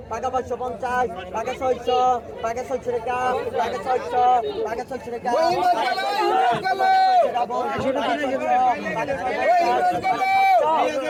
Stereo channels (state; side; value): identical; both; correlation 1.00